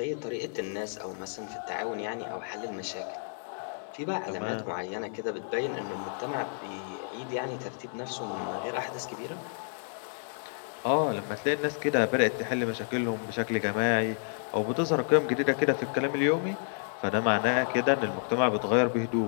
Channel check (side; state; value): right; silent; digital silence